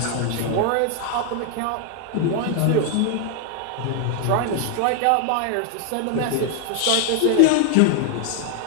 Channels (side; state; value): both; different; correlation 0.00